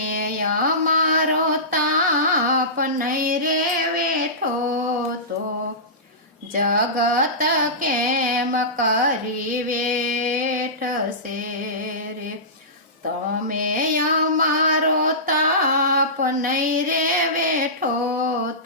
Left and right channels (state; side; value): normal; both; correlation -0.20